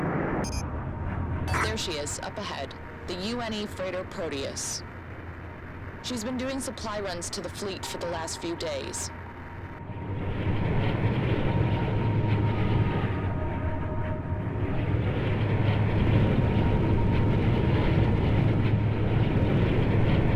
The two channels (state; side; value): identical; both; correlation 1.00